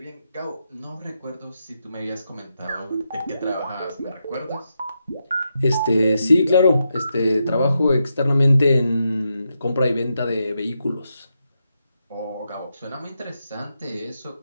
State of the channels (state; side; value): inverted; both; correlation -0.85